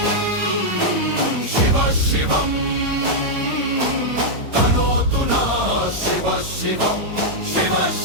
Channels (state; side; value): late; left; 8.9 ms